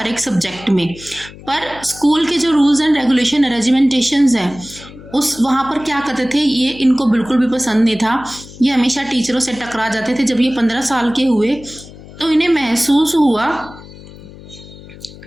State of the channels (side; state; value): left; noise; hum, 18 dB below the sound